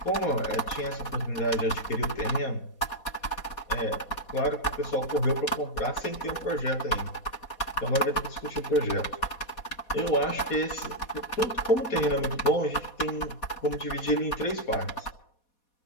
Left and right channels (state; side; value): late; right; 4.2 ms